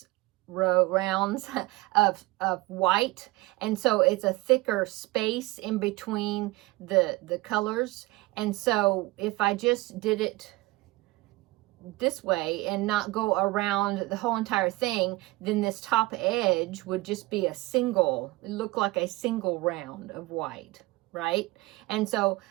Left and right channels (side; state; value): left; quieter; 20.9 dB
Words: of white, and so it's a thicker space in between the colors. And so if I just did it this way and not go around the whole entire thing, then this top edge would just be look like a single round of white, right? And so